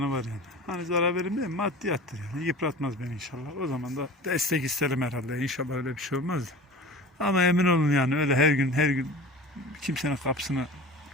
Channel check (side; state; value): both; normal; correlation 0.37